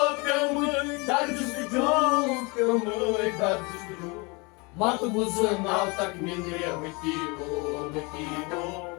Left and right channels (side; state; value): right; quieter; 28.6 dB